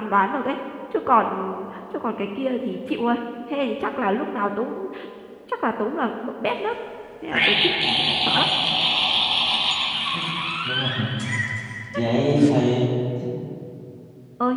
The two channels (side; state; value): both; identical; correlation 1.00